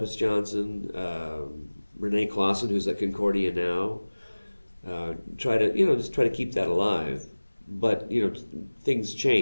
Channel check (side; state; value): both; inverted; correlation -1.00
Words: Johnson, Renee Clausen, who's at Concordia now. Try to keep that alive. But things